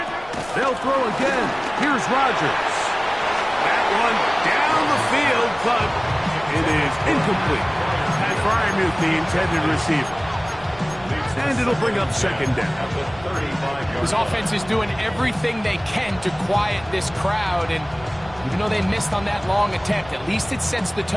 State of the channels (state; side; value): noise; left; rumble, 20 dB below the sound